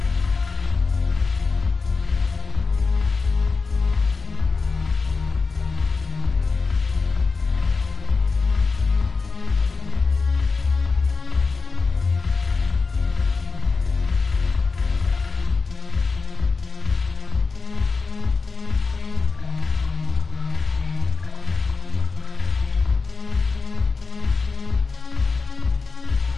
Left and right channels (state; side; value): quieter; right; 4.4 dB